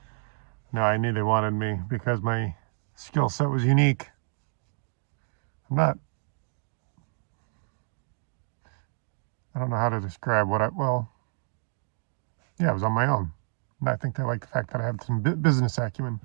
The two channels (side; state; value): left; silent; digital silence